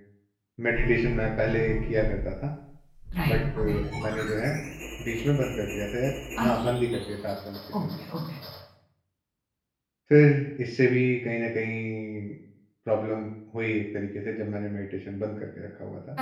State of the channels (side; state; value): both; identical; correlation 1.00